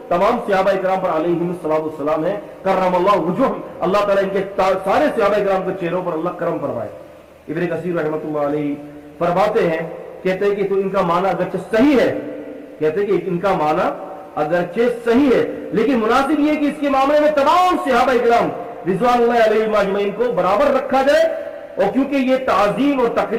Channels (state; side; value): identical; both; correlation 1.00